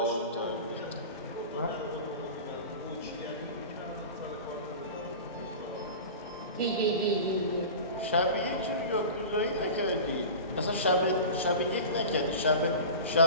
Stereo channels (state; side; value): inverted; both; correlation -0.33